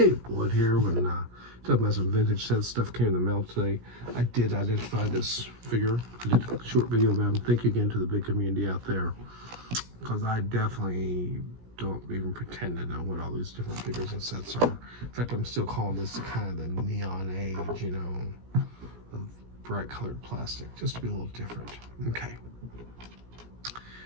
Wood here. When talking about some vintage set stuff came in the mail today. I did identify this figure. I did a short video about him. Thank you again to the big community out there, because I definitely don't even pretend to know what all these different figures and sets are. In fact, I'm still calling this kind of the neon age, you know, of bright colored plastic, just to be a little different. Okay.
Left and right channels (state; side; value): late; left; 17 ms